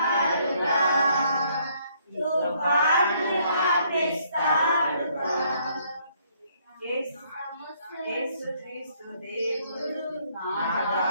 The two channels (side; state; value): both; inverted; correlation -0.67